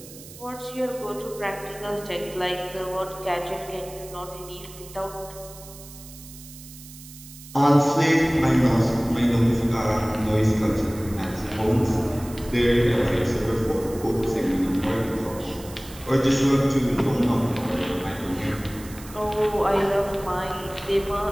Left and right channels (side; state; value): right; noise; hiss, 17 dB below the sound